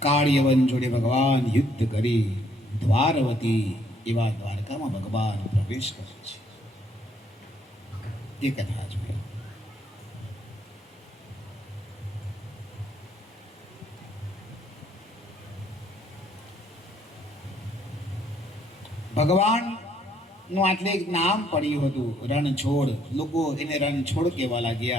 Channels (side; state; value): both; normal; correlation 0.67